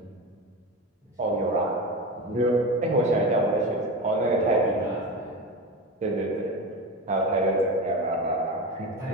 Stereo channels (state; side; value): normal; both; correlation 0.23